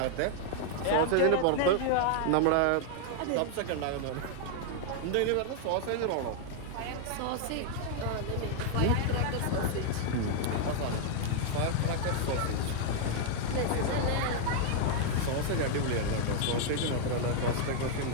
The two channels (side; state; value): both; different; correlation 0.00